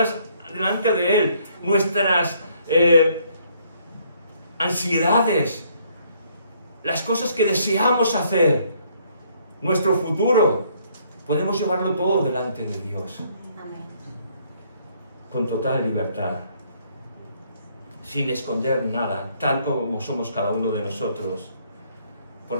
delante de Él. Nuestras ansiedades. Las cosas que deseamos hacer. Nuestro futuro. Podemos llevarlo todo delante de Dios. Con total libertad. Sin esconder nada, tal como somos cada uno de nosotros.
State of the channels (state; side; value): inverted; both; correlation -0.66